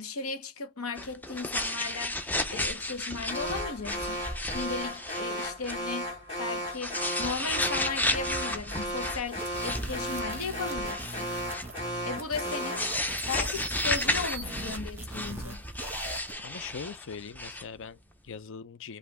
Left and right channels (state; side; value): normal; both; correlation -0.04